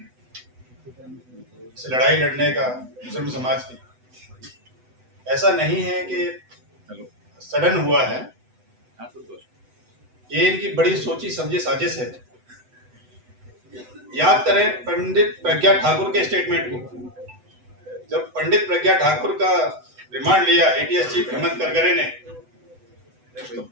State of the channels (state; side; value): late; left; 8.0 ms